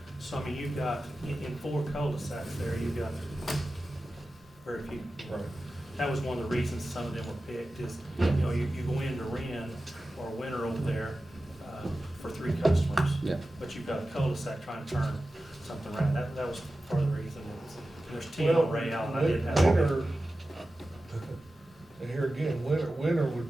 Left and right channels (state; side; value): normal; both; correlation 0.94